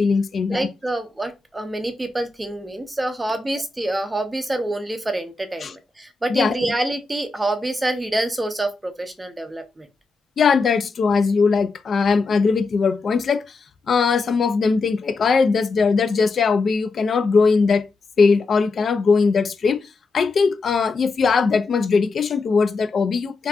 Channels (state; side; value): quieter; right; 3.8 dB